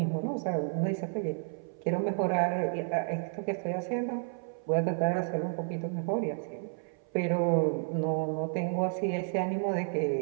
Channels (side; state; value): left; silent; 57 dB below the other